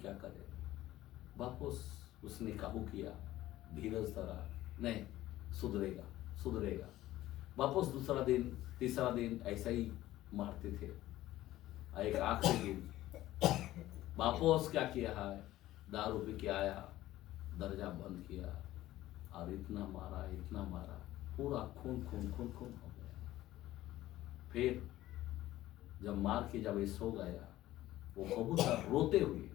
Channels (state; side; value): quieter; right; 15.3 dB